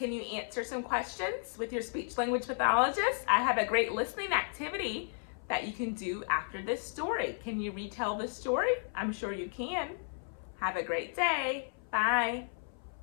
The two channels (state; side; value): silent; right; 55 dB below the other